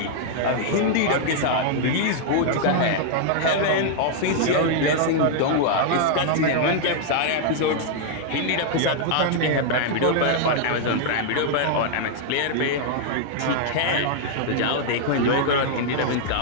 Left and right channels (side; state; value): both; different; correlation 0.00